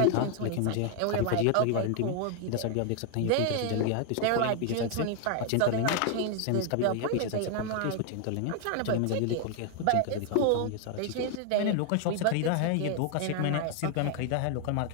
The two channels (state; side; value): different; both; correlation 0.00